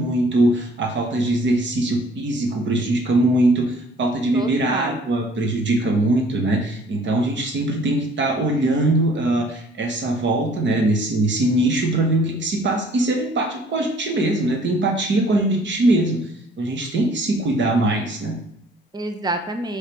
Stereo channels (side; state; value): both; normal; correlation 0.56